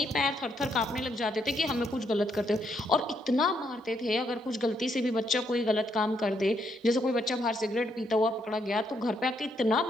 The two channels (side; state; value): both; normal; correlation 0.75